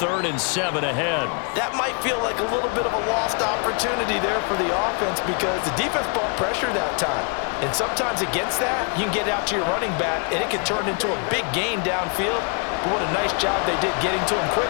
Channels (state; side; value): quieter; right; 38.5 dB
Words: and 7 ahead. That might feel like a little bit of a lost opportunity there for the offense because the defense brought pressure that time. And sometimes against that, you can get out to your running back, and it can turn into a big gain downfield. But what a nice job they did getting to him